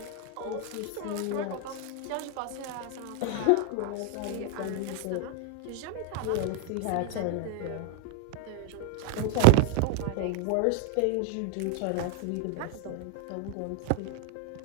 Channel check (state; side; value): different; both; correlation 0.00